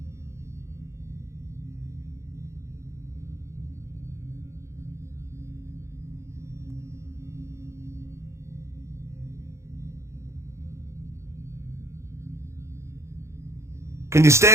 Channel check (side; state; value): left; late; 0.14 ms